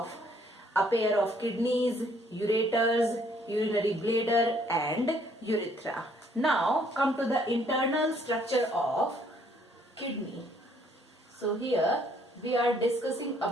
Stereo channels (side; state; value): both; normal; correlation 0.65